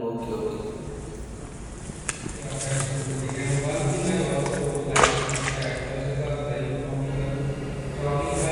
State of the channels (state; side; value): identical; both; correlation 1.00